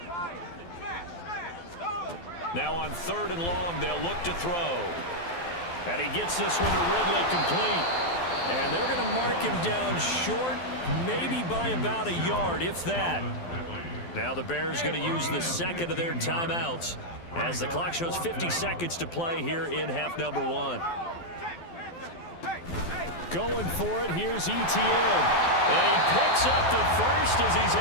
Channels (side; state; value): right; late; 12 ms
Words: Now on 3rd and long, they'll look to throw. And he gets this one to Ridley, complete. And they're going to mark him down short, maybe by about a yard, if that. Now the Bears going to use the second of their timeouts, as the clock shows 50 seconds to play here in half number 1. Going for it, here's ETN. And he picks up the first as he's